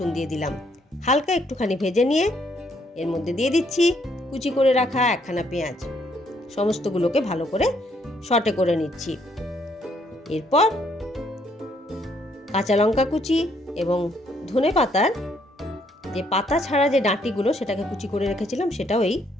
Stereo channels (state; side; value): normal; both; correlation 0.70